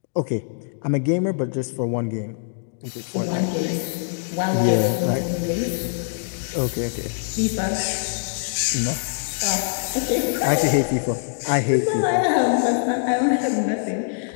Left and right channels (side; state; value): right; silent; digital silence